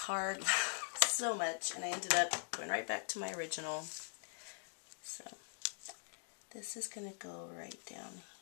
so much, and I ended up going right back to my original. So this is going to go right down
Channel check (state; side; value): silent; right; digital silence